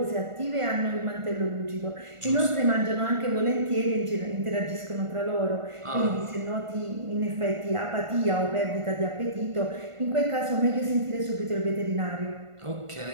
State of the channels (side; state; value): left; late; 1.5 ms